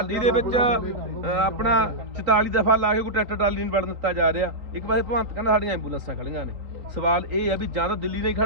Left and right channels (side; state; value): left; late; 3.9 ms